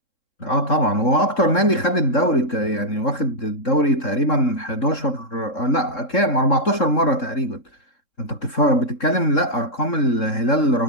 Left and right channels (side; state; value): right; late; 3.7 ms